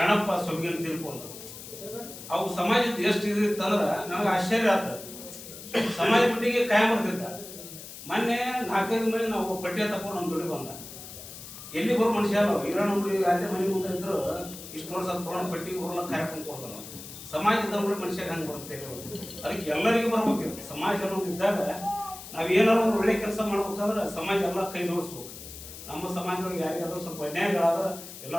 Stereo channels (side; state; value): left; noise; hiss, 13 dB below the sound